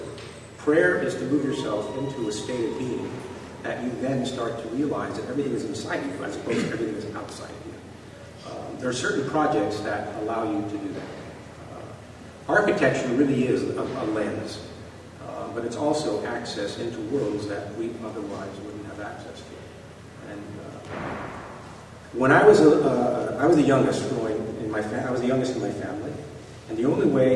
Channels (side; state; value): both; identical; correlation 1.00